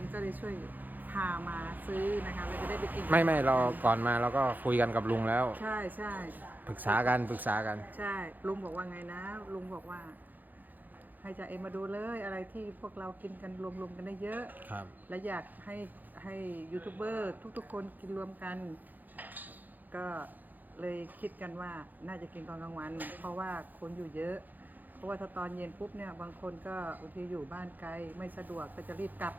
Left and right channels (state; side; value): late; left; 0.085 ms